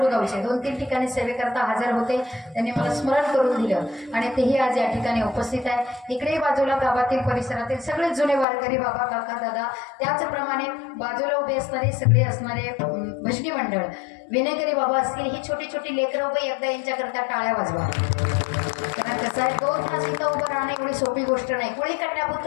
गावचे 2-3 ठिकाणी सेवेकरता हजर होते, त्यांनी मला स्मरण करून दिलं आणि तेही आज या ठिकाणी उपस्थित आहे. इकडे बाजूला गावातील परिसरातील सगळे जुने वारकरी बाबा काका दादा, त्याचप्रमाणे बाजूला उभे असणारे सगळे असणारे भजनी मंडळ विनेकरी बाबा असतील. ही छोटी छोटी लेकरं उभे एकदा यांच्याकरता टाळ्या वाजवा. कारण कसं आहे 2 तास इथं उभं राहणं एवढी सोपी गोष्ट नाही. कोळी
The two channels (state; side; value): drops out; right; at 8.5 s